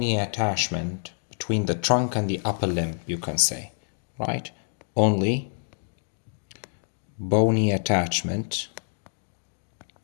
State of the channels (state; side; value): silent; right; 60 dB below the other